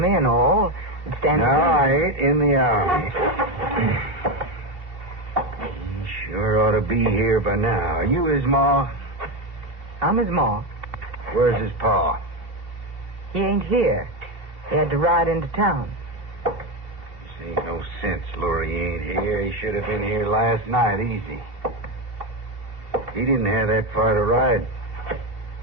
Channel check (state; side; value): late; left; 2.7 ms